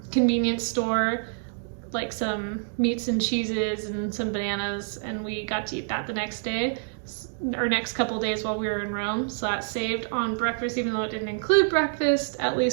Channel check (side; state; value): left; silent; digital silence